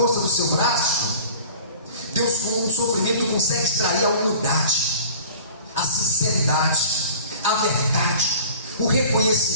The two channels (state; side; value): inverted; both; correlation -0.43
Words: do seu braço. Deus, com o sofrimento, consegue extrair a humildade, a sinceridade, a verdade, o